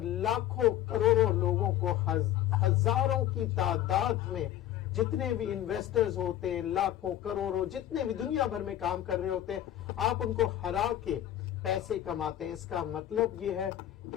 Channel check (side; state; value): right; quieter; 12.3 dB